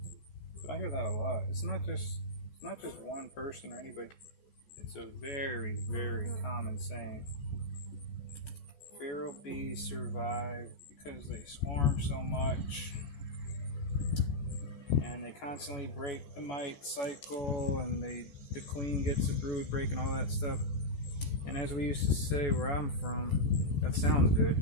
But I hear that a lot. It's not just one person or anybody. It's a very, very common saying. Feral bees survive because they swarm so much. And they constantly break the mite cycle, and the queen gets the brood break and all that stuff. And as we used to say where I'm from, that sounds good.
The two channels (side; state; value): right; late; 14 ms